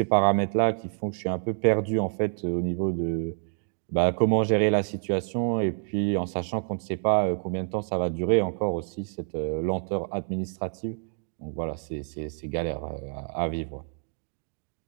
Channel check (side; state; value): left; silent; 60 dB below the other